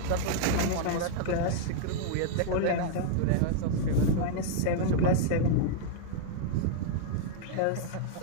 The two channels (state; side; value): different; both; correlation -0.01